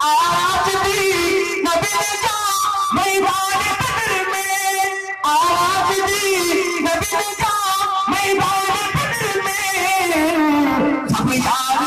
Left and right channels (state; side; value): identical; both; correlation 1.00